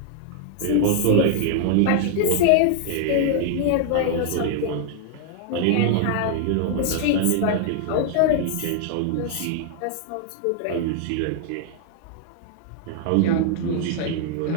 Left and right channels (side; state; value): both; different; correlation -0.01